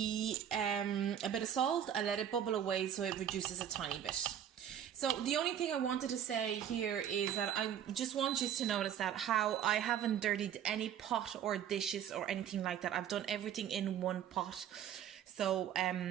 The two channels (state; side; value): quieter; left; 9.7 dB